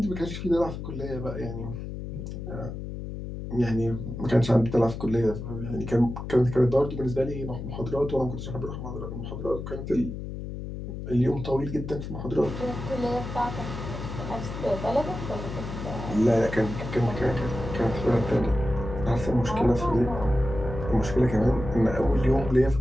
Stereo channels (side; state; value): left; noise; hum, 7 dB below the sound